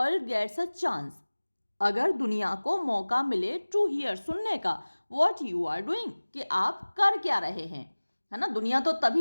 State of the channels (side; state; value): both; inverted; correlation -1.00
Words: gets a chance, अगर दुनिया को मौका मिले, टू हियर, सुनने का, व्हाट यू आर डूइंग, कि आप कर क्या रहे हैं, है ना। दुनिया तो